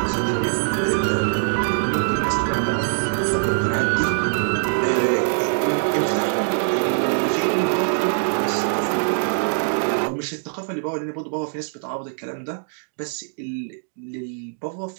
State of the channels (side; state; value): left; silent; digital silence